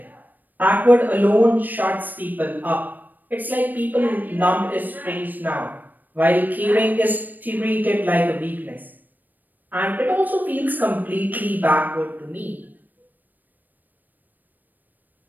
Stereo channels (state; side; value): late; left; 0.087 ms